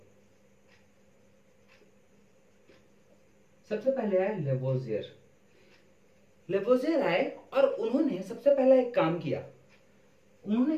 सबसे पहले आए लेवोजियर आए और उन्होंने सबसे पहले एक काम किया, उन्होंने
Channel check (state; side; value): identical; both; correlation 1.00